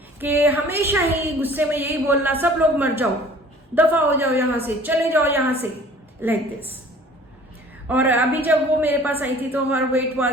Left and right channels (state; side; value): normal; both; correlation 0.49